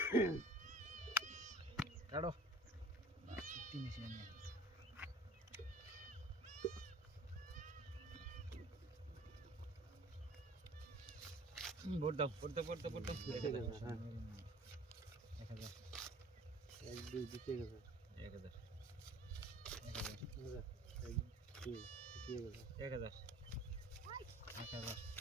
কাটো তিন এসে নিয়ে ভোট দাও 1000 এক দুই দিতে গেছে 1000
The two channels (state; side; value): normal; both; correlation 0.48